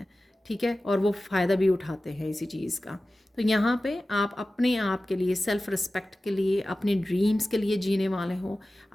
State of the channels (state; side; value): normal; both; correlation 0.96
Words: ठीक है, और वो फ़ायदा भी उठाते हैं इसी चीज़ का। तो यहाँ पे आप अपने आप के लिए, सेल्फ़ रिस्पेक्ट के लिए, अपने ड्रीम्स के लिए जीने वाले हो,